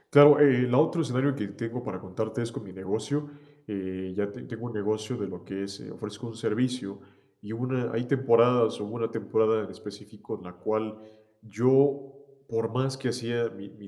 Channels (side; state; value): both; identical; correlation 1.00